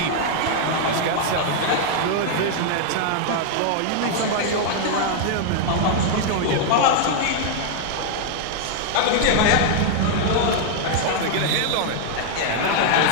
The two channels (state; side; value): different; both; correlation 0.00